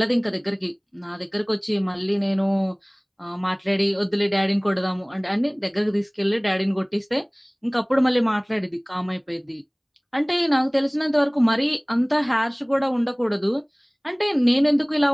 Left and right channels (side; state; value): both; identical; correlation 1.00